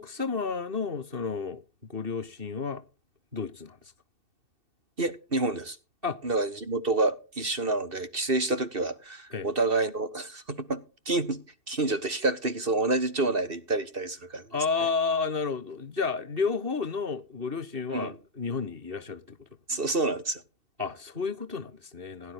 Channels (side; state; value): left; late; 2.7 ms